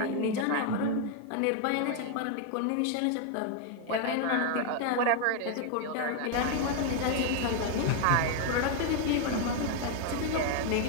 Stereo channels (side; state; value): both; different; correlation 0.01